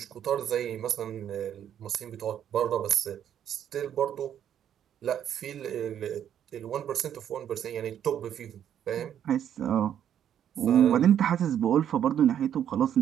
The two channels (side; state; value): left; quieter; 9.8 dB